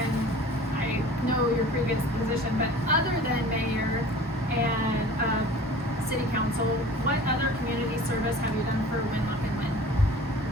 I know your previous position, but other than mayor and city council, what other community service have you done for Winlock and Win?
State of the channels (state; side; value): normal; both; correlation 0.43